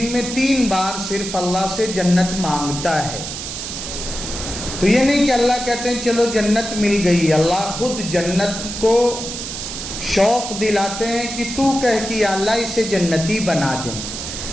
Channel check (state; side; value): noise; right; hiss, 7 dB below the sound